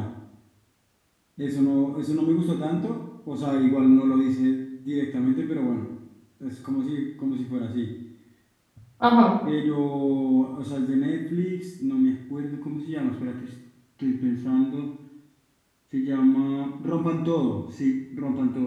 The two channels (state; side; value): identical; both; correlation 1.00